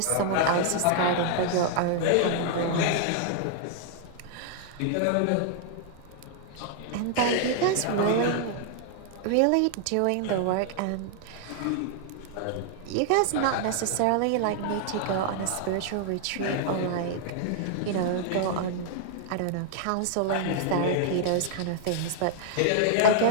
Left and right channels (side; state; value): both; different; correlation -0.01